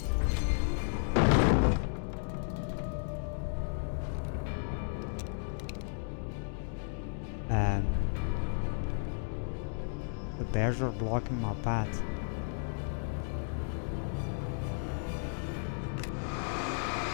The bears are blocking my path.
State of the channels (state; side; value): silent; right; digital silence